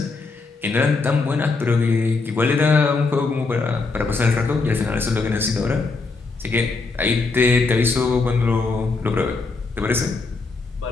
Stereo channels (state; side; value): quieter; right; 4.0 dB